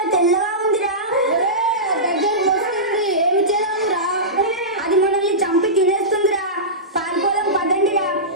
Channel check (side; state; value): both; normal; correlation -0.17